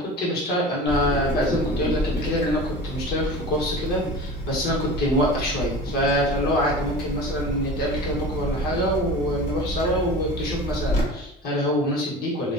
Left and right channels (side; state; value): both; normal; correlation 0.36